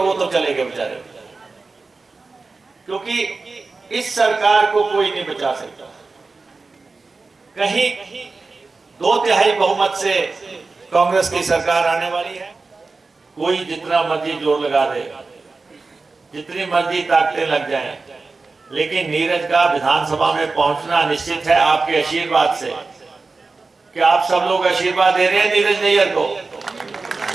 तो चले गए बेचारे, क्योंकि इस सरकार को कोई नहीं बचा सकता। कहीं 2/3 बहुमत से कांग्रेस की सरकार आने वाली है। कोई जितना मर्जी जोर लगा दे, जितनी मर्जी ताकतें लग जाएं, लेकिन नीरज का विधानसभा में पहुंचना निश्चित है आपके आशीर्वाद से। क्या आप सब लोग आशीर्वाद दे रहे हैं नीरज नैयर को?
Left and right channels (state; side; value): quieter; left; 3.9 dB